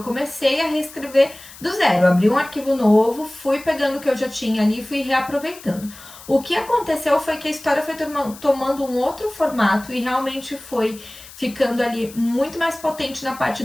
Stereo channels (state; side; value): noise; left; hiss, 18 dB below the sound